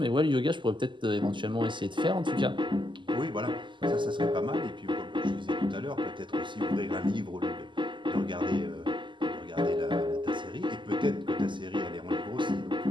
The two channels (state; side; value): late; left; 0.24 ms